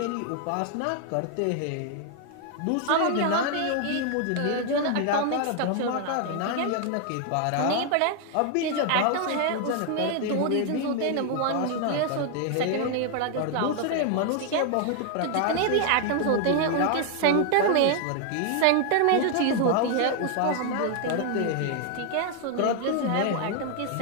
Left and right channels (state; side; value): different; both; correlation 0.00